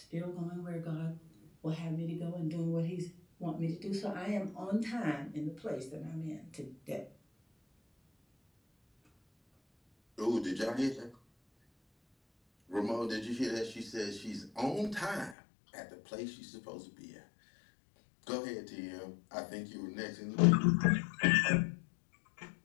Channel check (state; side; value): drops out; right; at 15.4 s